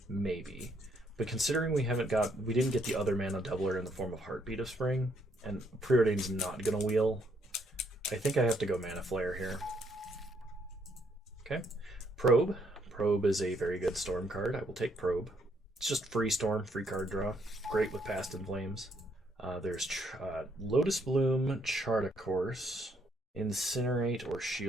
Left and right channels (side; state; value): both; normal; correlation 0.71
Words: maybe. But considering we didn't get the other mana doubler in the form of Heartbeat of Spring, and Preordain's not gonna wheel, I think I have to go Mana Flare here. Okay. Probe. Probe is a very good Storm card. I will take Probe. It's just free Storm, free card draw. Great with Past in Flames. There's Lotus Bloom, Chart a Course, Incinerate, or